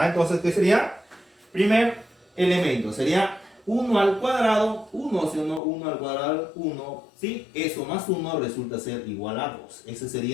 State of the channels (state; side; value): drops out; right; at 5.6 s